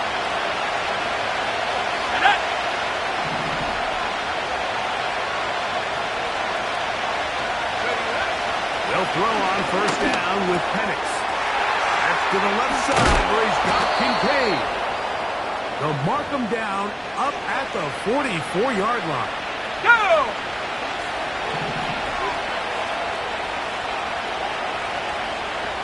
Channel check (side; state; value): both; identical; correlation 1.00